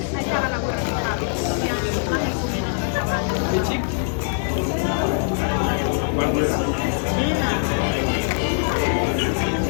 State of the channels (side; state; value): right; silent; 61 dB below the other